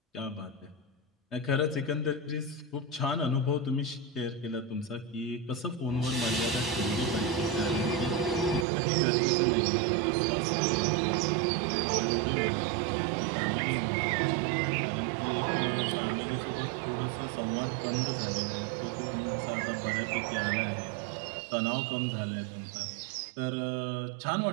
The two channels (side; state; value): left; drops out; at 8.7 s